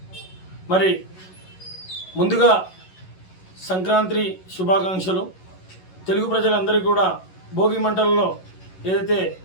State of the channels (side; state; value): right; late; 11 ms